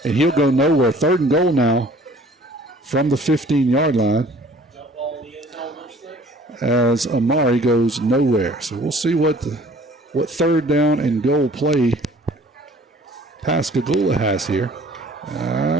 and he'll go nowhere. Third and goal now from the 15-yard line as Amari goes nowhere. So we'll see what third down and goal play Pascagoula has here.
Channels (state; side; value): normal; both; correlation 0.52